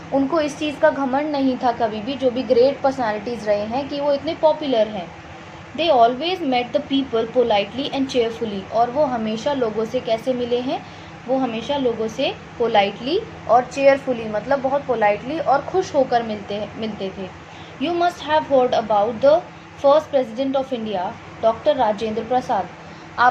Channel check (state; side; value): identical; both; correlation 1.00